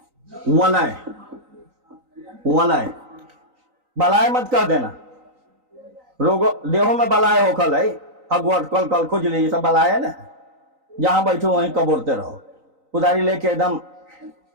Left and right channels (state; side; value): late; left; 3.9 ms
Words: वलय, वलय, बलाय मत कर देना, रोगो देहो में बलाय हो कल है, हगवट कल कल खुजली, सब बलाय है ना, जहां बैठो वहीं कबोरते रहो, कुदारी लेके एकदम।